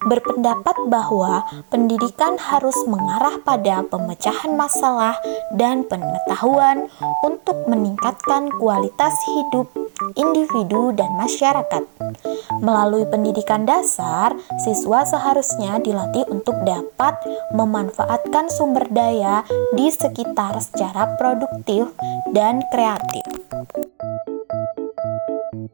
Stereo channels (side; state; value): left; silent; digital silence